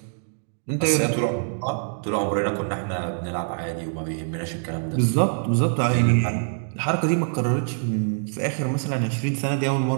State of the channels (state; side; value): silent; left; digital silence